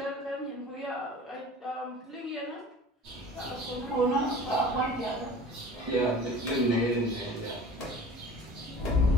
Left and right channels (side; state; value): both; normal; correlation 0.43